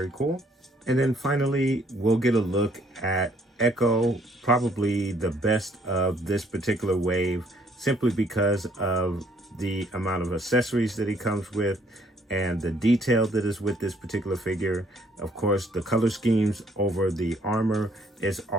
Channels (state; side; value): normal; both; correlation 0.65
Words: cool. And then finally, we'll get a look at Echo, probably the best of this particular wave, simply because of the amount of accessories that he comes with and the detail that is with this particular figure. Of course, the color schemes over the armor is